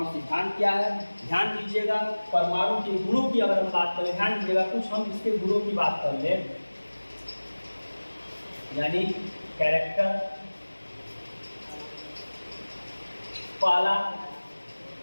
सिद्धांत क्या है। ध्यान दीजिएगा, परमाणु के गुणों की अगर हम बात करें, ध्यान दीजिएगा कुछ हम इसके गुणों की बात कर लें, यानी कैरेक्टर, पहला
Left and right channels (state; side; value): inverted; both; correlation -1.00